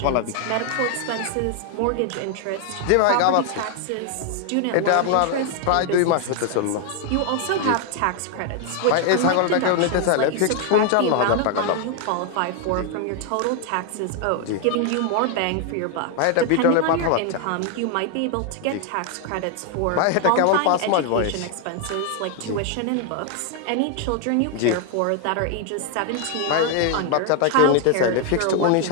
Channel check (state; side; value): different; both; correlation 0.00